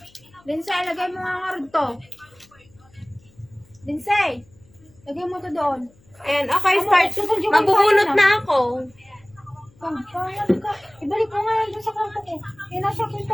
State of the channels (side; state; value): left; noise; hum, 30 dB below the sound